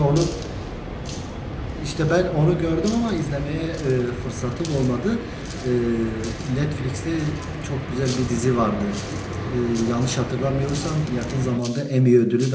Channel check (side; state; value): both; identical; correlation 1.00